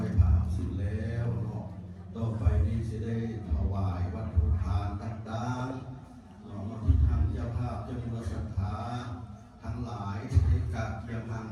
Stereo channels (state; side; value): identical; both; correlation 1.00